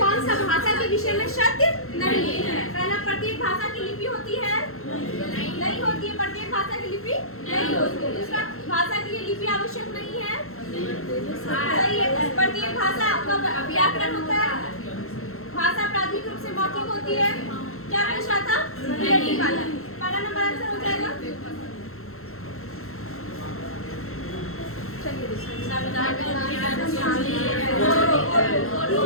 सा भाषा के विषय में सत्य नहीं है? पहला, प्रत्येक भाषा की लिपि होती है? नहीं होती है। प्रत्येक भाषा की लिपि नहीं होती है। दूसरा, भाषा के लिए लिपि आवश्यक नहीं है? सही है। प्रत्येक भाषा का व्याकरण होता है। भाषा प्राथमिक रूप से मौखिक होती है। क्या पूछ रहा था? रिलेटिव वाला। पहला नंबर आंसर हो जाएगा। चलिए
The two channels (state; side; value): late; right; 0.62 ms